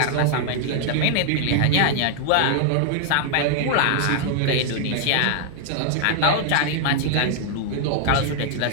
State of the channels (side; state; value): both; different; correlation 0.00